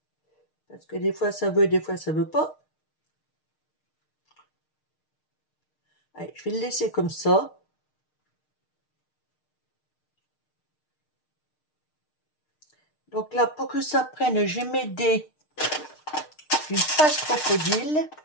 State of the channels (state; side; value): late; right; 6.5 ms